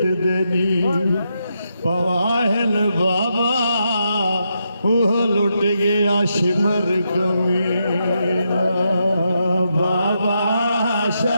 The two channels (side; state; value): both; inverted; correlation -0.82